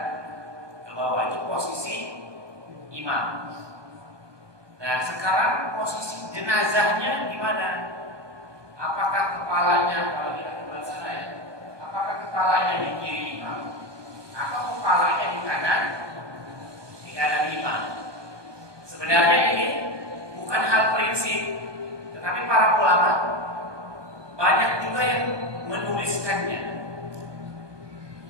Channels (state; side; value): late; left; 1.2 ms